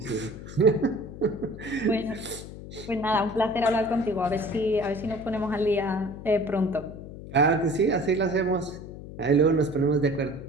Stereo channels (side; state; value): left; noise; hum, 13 dB below the sound